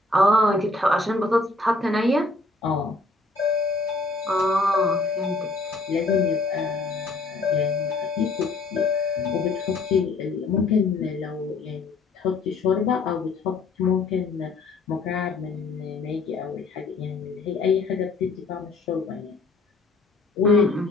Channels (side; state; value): right; quieter; 3.4 dB